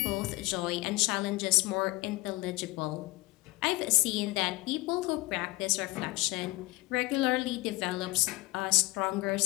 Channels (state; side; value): quieter; right; 21.9 dB